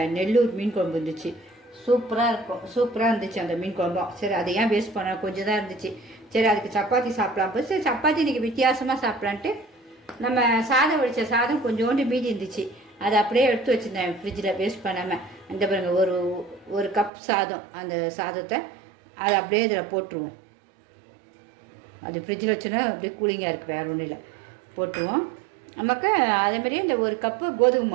நெல்லூர் மீன் குழம்பு இருந்துச்சு. சூப்பராக இருந்துச்சு அந்த மீன் குழம்பும். சரி, அதை ஏன் வேஸ்ட் பண்ண, கொஞ்சம் தான் இருந்துச்சு. சரி, அதுக்கு சப்பாத்தி சாப்பிடலாம் போது சரி சப்பாத்தி இன்றைக்கி வித்தியாசமாக சாப்பிட்லான்ட்டு நம்ம சாதம் வடித்த சாதம் கொஞ்சோண்டு மீதி இருந்துச்சு. அதை அப்படியே எடுத்து வச்சுருந்தேன் ஃப்ரிட்ஜில் வேஸ்ட் பண்ணாமல். அந்த பாருங்க, ஒரு கப் சாதம், அந்த சாதத்தை அதை அப்படியே இதில் போட்டுருவோம். அது ஃப்ரிட்ஜில் வச்சோன்னா அப்படியே கூலிங்காக இருக்குது, வேறு ஒன்றும் இல்லை. போட்டுருவோம். நமக்கு அதேமாதிரியே இந்த ஒரு கப்பு கோதுமை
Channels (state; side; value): drops out; left; at 17.1 s